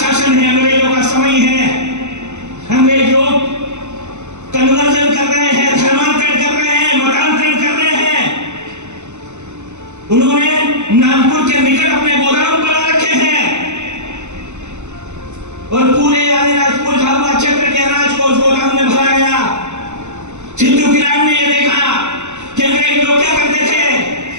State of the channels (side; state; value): left; late; 0.83 ms